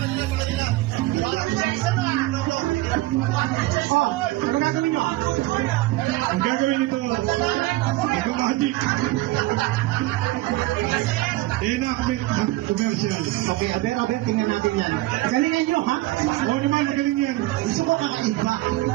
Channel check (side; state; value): left; quieter; 18.3 dB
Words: Oh, ano gagawin nyo? Ang gagawin nito, nag-magic. Enactment ng commercial. Okay, aber, tingnan natin yan. Galingan nyo, ha? Oo naman, magaling yan. Gusto ko kakaiba.